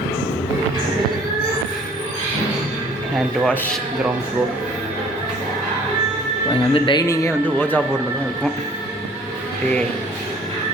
Hand wash ground floor. இங்கே வந்து டைனிங்கே வந்து ஓஜா போர்டில் தான் இருக்கும். அப்படியே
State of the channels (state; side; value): normal; both; correlation 0.54